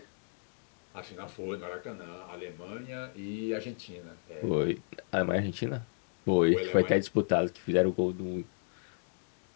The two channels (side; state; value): right; silent; digital silence